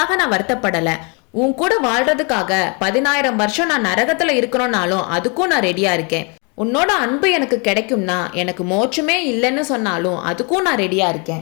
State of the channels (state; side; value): quieter; right; 33.7 dB